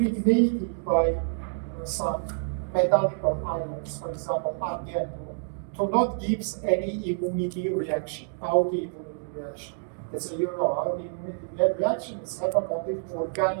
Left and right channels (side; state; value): left; silent; digital silence